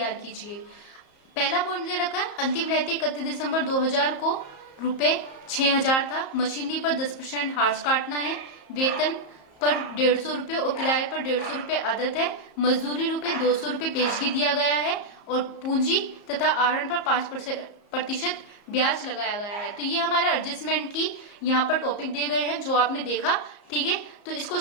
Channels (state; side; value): late; right; 34 ms